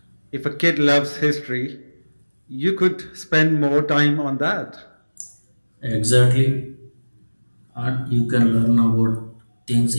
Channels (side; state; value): both; inverted; correlation -1.00